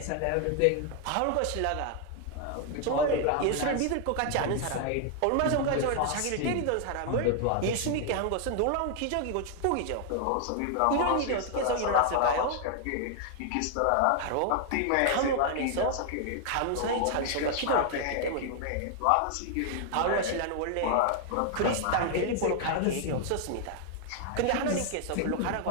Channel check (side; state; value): both; different; correlation 0.00